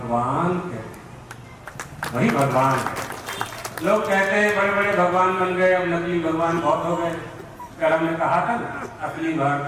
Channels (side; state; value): both; identical; correlation 1.00